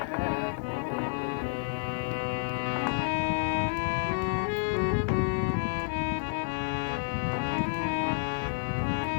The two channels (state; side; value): silent; right; 57 dB below the other